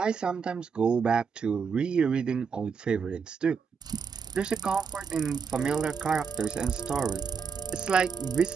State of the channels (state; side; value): quieter; left; 5.9 dB